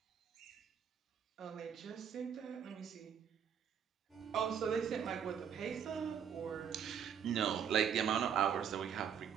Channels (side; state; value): left; quieter; 8.1 dB